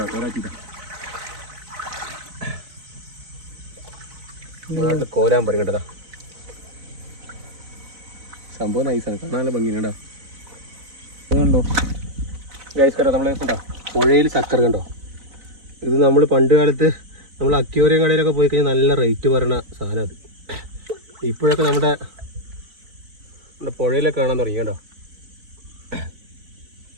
പോരാച്ചി കോരാൻ പറയും കേട്ടതാ. സംഭവം നൈസാണ്, കാണാൻ നല്ല ഭംഗിയുണ്ടോ. കണ്ടോ ഗൈസ്, കണ്ടോ നമ്മൾ കണ്ടോ പുഴയിൽ ചക്കര കണ്ടോ. ഇത് നമ്മൾ പണ്ട് കാലത്ത് നമ്മൾ അക്വേറിയം കടയിലൊക്കെ പോയി കഴിഞ്ഞാൽ നല്ല റേറ്റ് പറയുന്ന സാധനം. അത് ഇപ്പോഴൊക്കെ നമ്മുടെ പുഴയിലൊക്കെ കാണാൻ തുടങ്ങി കേട്ടോ.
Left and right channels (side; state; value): left; late; 4.0 ms